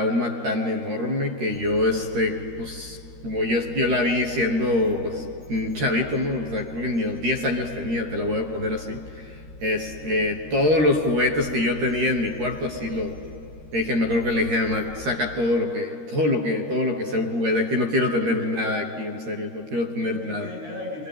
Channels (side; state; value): left; late; 13 ms